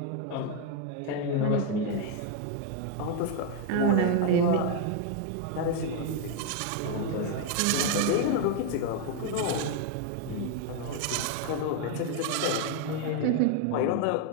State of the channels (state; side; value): different; both; correlation 0.00